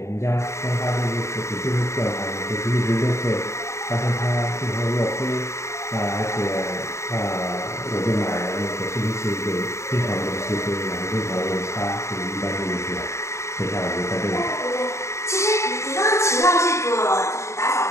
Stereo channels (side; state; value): right; late; 0.14 ms